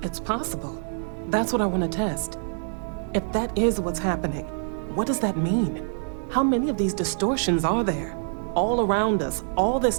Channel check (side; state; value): left; silent; digital silence